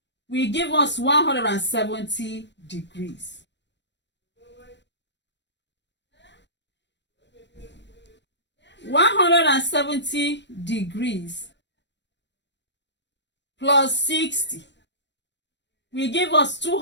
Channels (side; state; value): right; late; 0.52 ms